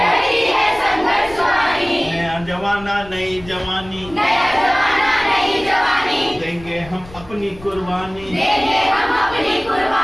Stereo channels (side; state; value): left; noise; rumble, 19 dB below the sound